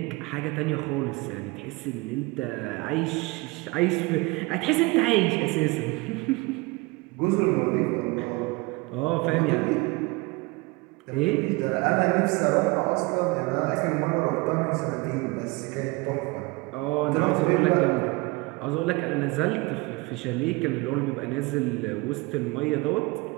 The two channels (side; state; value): left; quieter; 24.4 dB